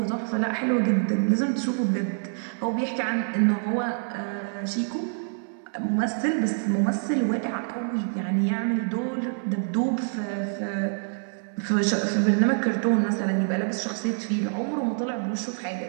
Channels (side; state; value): left; silent; 61 dB below the other